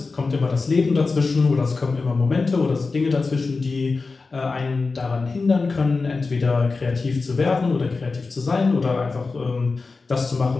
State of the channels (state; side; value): quieter; right; 4.1 dB